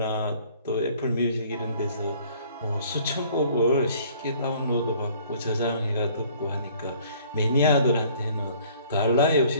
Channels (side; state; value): both; inverted; correlation -0.56